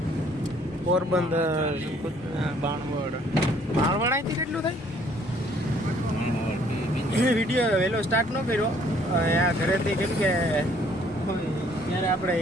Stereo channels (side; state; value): both; normal; correlation 0.62